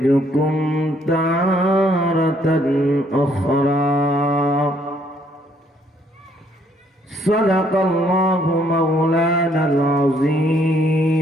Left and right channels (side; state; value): both; normal; correlation 0.67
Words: تارة أخرى. صدق الله مولانا